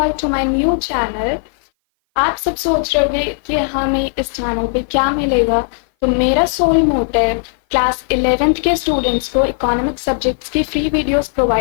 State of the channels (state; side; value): silent; right; 58 dB below the other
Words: to my new channel. आप सब सोच रहे होंगे कि हमें इस चैनल पे क्या मिलेगा। तो मेरा सोल मोटिव क्लास 11th के स्टूडेंट्स को इकोनॉमिक सब्जेक्ट्स की फ्री वीडियोस